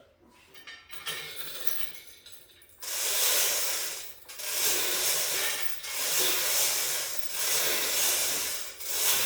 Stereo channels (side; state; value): both; identical; correlation 1.00